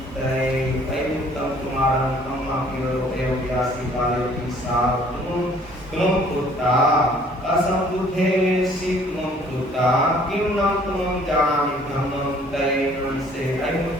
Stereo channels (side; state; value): both; normal; correlation 0.57